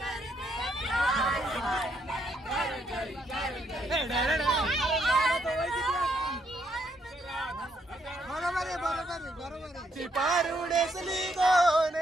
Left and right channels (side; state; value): both; normal; correlation 0.74